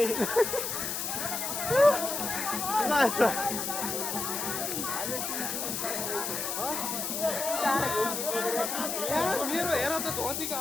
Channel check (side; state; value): left; noise; hiss, 2 dB below the sound